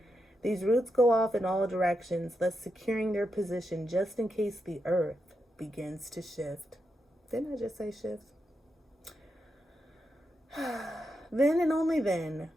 These roots go off in all directions, thus securing their position just in case the earth begins to shift. Didn't I just say shift? Then and only then,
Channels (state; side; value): normal; both; correlation 0.85